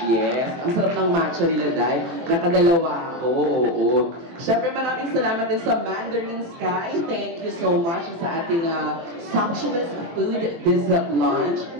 Yes. Ang sarap ng matcha nila, dahil nakadalawa ako. Oo. Siyempre, maraming salamat din sa Mandarin Sky. Thank you so much sa ating sumptuous food this lunch.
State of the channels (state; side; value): late; left; 23 ms